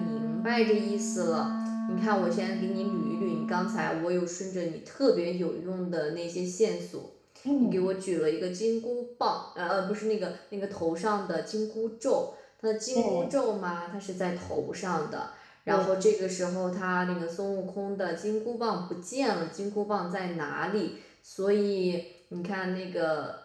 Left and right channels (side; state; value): both; identical; correlation 1.00